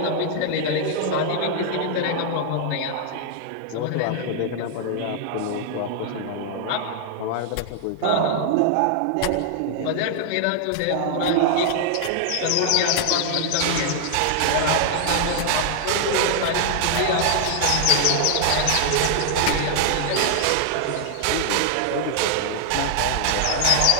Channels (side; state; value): both; different; correlation 0.00